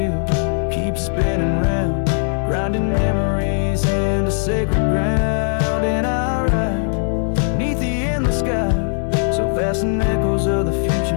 keeps spinning round, grinding memories into sacred ground. And I ride neath the endless sky, so vast and echoes of the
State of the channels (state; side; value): silent; right; 67 dB below the other